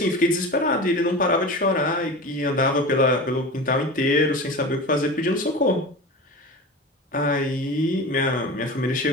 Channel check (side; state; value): both; normal; correlation 0.30